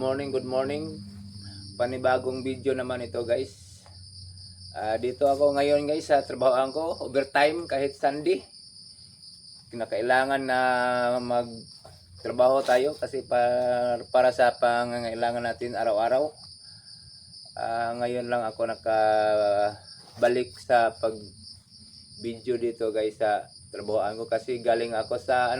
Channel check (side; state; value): both; identical; correlation 1.00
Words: good morning. Panibagong video naman ito guys. Dito ako ngayon guys sa trabahoan ko, overtime kahit Sunday. Kinakailangan na magtrabaho tayo kasi para sa pangangailangan natin araw-araw. Ngayon lang ako nakabalik sa pag video dito guys sa trabahoan ko kasi galing ako sa